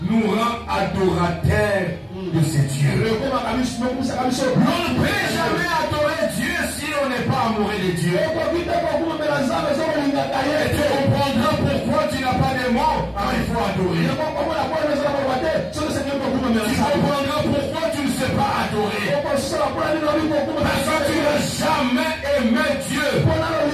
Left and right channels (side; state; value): both; identical; correlation 1.00